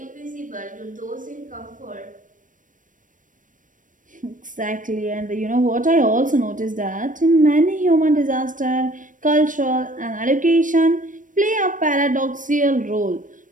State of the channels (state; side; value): late; left; 0.38 ms